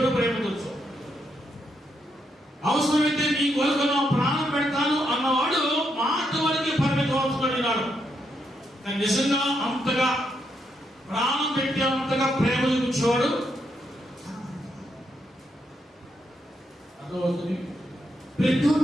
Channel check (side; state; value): both; normal; correlation 0.79